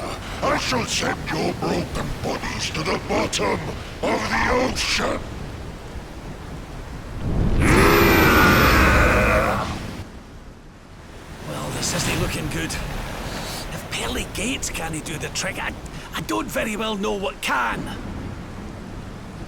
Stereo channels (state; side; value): identical; both; correlation 1.00